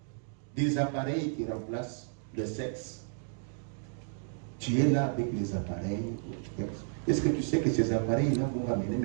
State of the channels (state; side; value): silent; left; digital silence